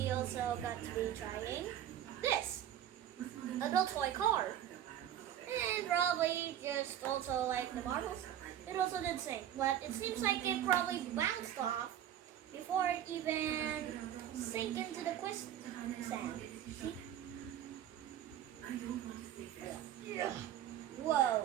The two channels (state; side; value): quieter; left; 11.0 dB